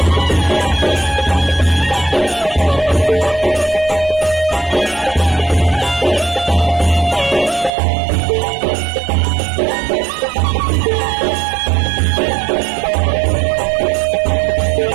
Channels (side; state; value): left; drops out; at 7.7 s